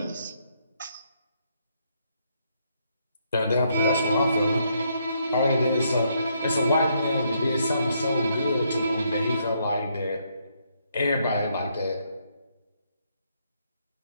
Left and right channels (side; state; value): both; inverted; correlation -0.74